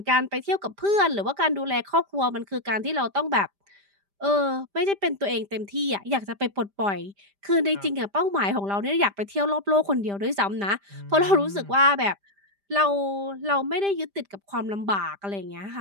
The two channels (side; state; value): left; late; 5.0 ms